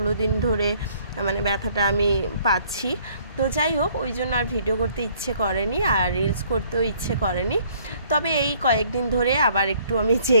দিন ধরে ব্যথাটা আমি পাচ্ছি। তো যাই হোক, ওই জন্য আর ভিডিও করতে ইচ্ছে করেনি, আর রিলস করতেও ইচ্ছে করেনি। তবে এই কয়েকদিন ধরে আবার একটু আমি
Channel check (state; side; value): inverted; both; correlation -0.61